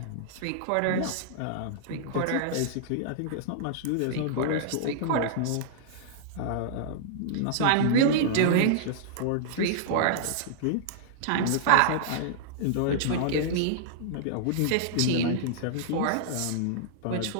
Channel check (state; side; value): different; both; correlation -0.01